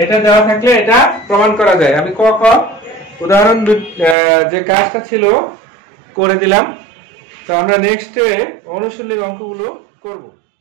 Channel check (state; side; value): drops out; left; at 4.2 s